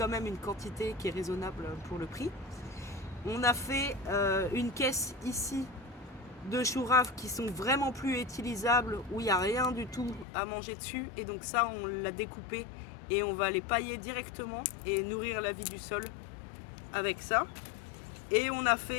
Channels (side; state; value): right; drops out; at 10.2 s